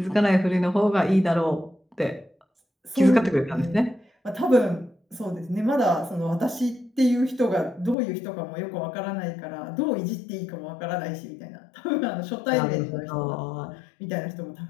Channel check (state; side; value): drops out; right; at 8.0 s